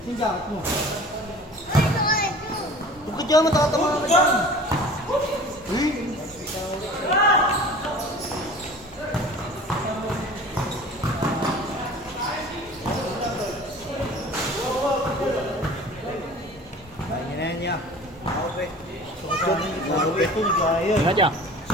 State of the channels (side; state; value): both; normal; correlation 0.43